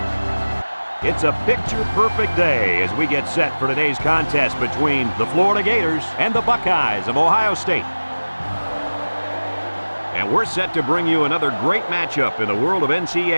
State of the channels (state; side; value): inverted; both; correlation -1.00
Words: It's a picture-perfect day as we get set for today's contest between the Florida Gators and the Buckeyes of Ohio State. And we're set to bring you another great matchup in the world of